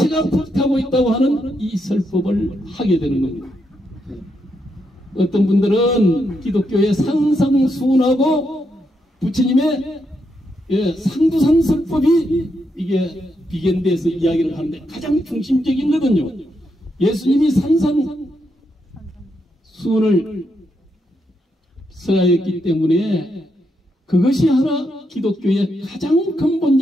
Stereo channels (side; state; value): both; normal; correlation 0.81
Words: 불타고 있다고 하는 이 설법을 하게 되는 겁니다. 어떤 분들은 기독교의 상상수훈하고 부처님의 상두산설법이 이게 비견돼서 이야기를 하는데 가장 중심적인 거거든요. 예수님이 산상수훈을 써야했기 때문에 그것이 하나 기독교의 가장